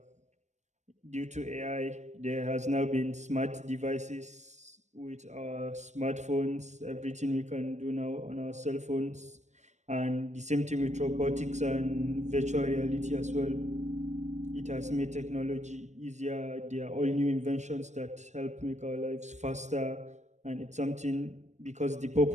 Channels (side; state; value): left; late; 0.34 ms